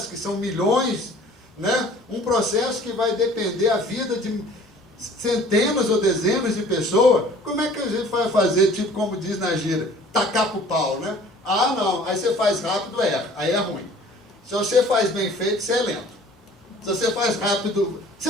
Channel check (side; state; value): both; normal; correlation 0.50